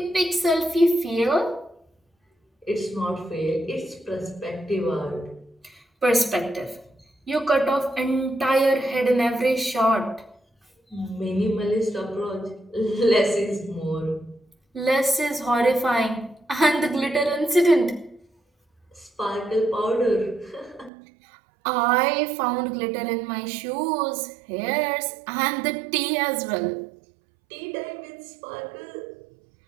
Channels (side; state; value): left; drops out; at 20.9 s